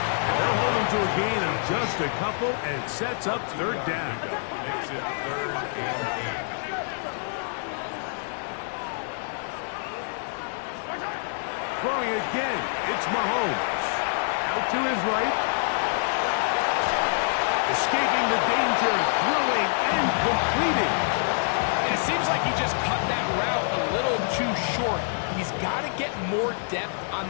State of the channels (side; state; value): right; silent; digital silence